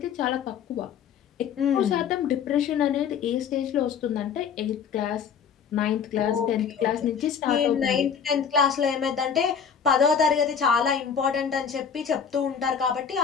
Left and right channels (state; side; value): quieter; right; 7.1 dB